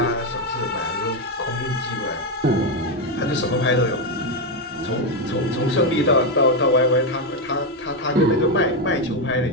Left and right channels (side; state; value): both; normal; correlation 0.06